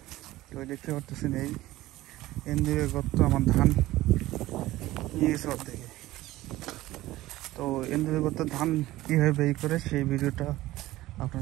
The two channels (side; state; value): left; quieter; 16.8 dB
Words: তো দেখতে পারতেছেন এই এন্দুরের গর্ত আমার ধান নিয়ে গেছে অর্ধেকে। তো এন্দুরের গর্ত ধান কীভাবে বের করে সেই ভিডিওটা